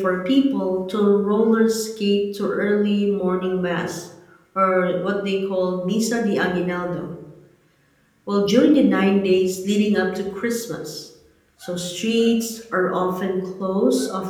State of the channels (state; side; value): identical; both; correlation 1.00